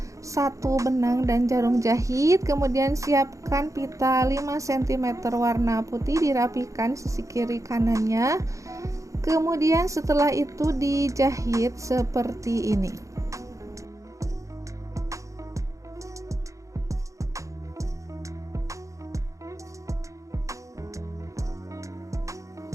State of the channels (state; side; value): late; left; 0.15 ms